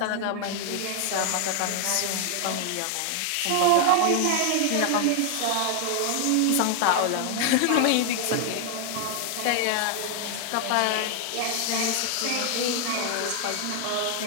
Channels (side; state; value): both; different; correlation 0.00